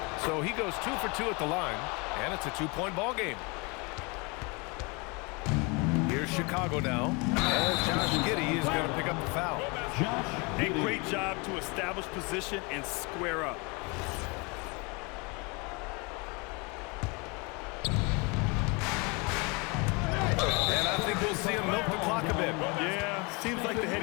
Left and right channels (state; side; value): quieter; right; 29.4 dB